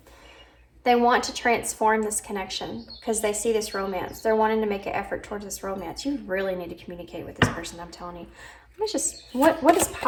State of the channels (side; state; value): both; identical; correlation 1.00